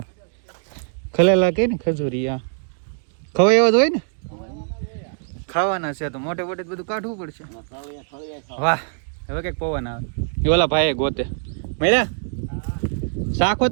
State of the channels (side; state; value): left; silent; digital silence